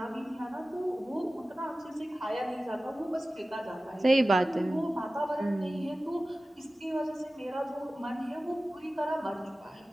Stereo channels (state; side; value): normal; both; correlation 0.96